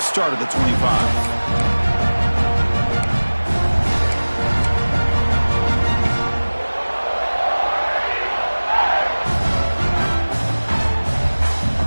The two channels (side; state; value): both; inverted; correlation -1.00